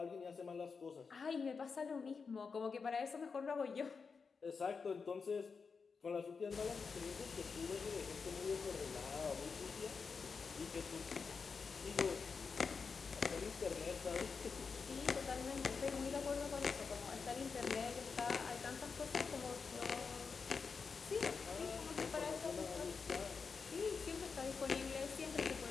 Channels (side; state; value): right; quieter; 5.2 dB